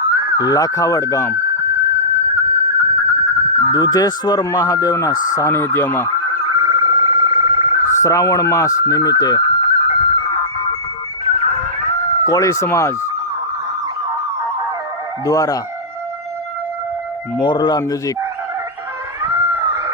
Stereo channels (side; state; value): both; normal; correlation -0.18